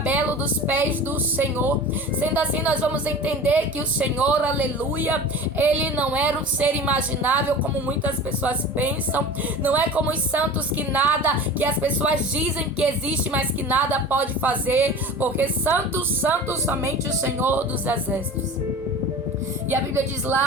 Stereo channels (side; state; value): both; normal; correlation 0.36